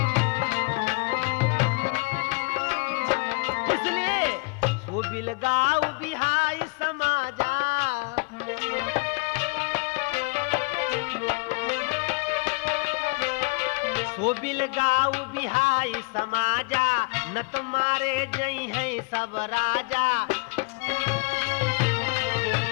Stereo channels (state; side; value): quieter; right; 29.7 dB